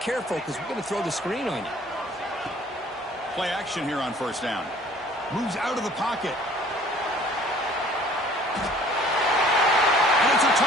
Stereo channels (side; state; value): both; normal; correlation 0.53